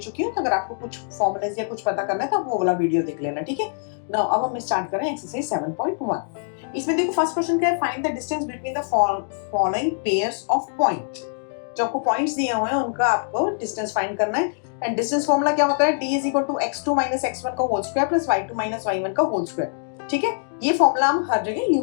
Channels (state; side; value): silent; right; digital silence